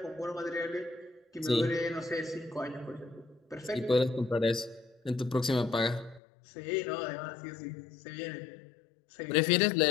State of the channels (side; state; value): right; drops out; at 6.2 s